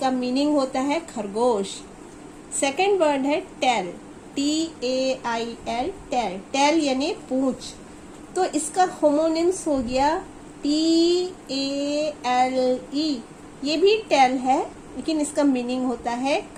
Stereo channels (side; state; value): both; identical; correlation 1.00